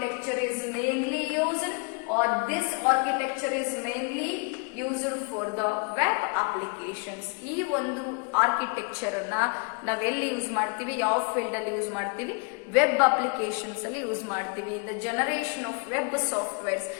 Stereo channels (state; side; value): quieter; right; 36.1 dB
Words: is mainly used, or this architecture is mainly used for the web applications. ಈ ಒಂದು architecture ಅನ್ನ ನಾವೆಲ್ಲಿ use ಮಾಡ್ತೀವಿ, ಯಾವ field ಅಲ್ಲಿ use ಮಾಡ್ತೀವಿ, web applications ಅಲ್ಲಿ use ಮಾಡ್ತೀವಿ. In the generation of web softwares,